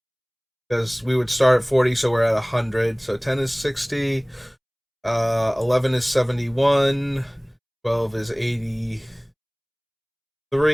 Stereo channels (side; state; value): both; identical; correlation 1.00